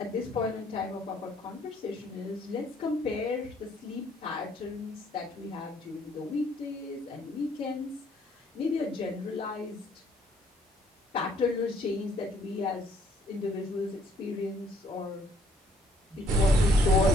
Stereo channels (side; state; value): both; normal; correlation 0.64